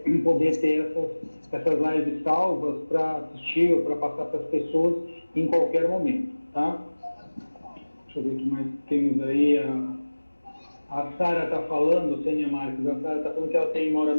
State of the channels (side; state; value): both; inverted; correlation -1.00